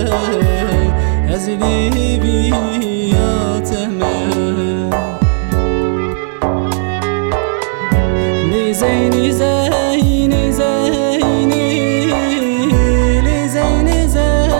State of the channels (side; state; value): left; silent; digital silence